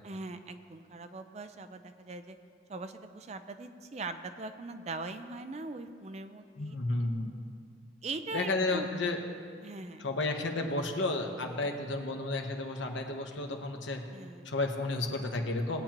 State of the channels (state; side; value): normal; both; correlation 0.32